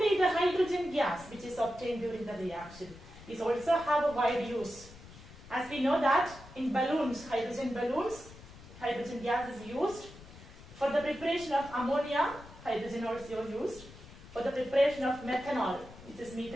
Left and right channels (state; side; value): noise; left; rumble, 18 dB below the sound